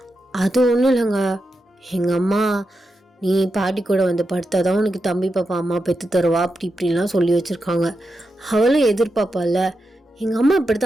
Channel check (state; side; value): normal; both; correlation 0.88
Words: அது ஒன்றும் இல்லைங்க, எங்கள் அம்மா நீ பாட்டி கூட வந்து படுத்தாதான் உனக்கு தம்பி பாப்பா அம்மா பெற்று தருவா அப்படி இப்படின்லாம் சொல்லி வச்சுருக்காங்க. அவளும் எதிர்பார்ப்பால. எங்கள் அம்மா இப்படி